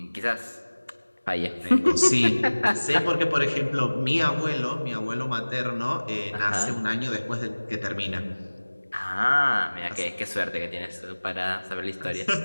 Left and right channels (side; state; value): both; inverted; correlation -1.00